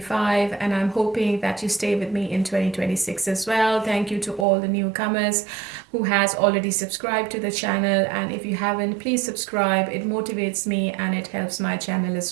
and I'm hoping that you stay with me in 2026 as well. Thank you to all the newcomers who has already subscribed to the channel, and if you haven't, please subscribe. It motivates me and it helps my channel as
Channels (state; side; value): drops out; left; at 4.5 s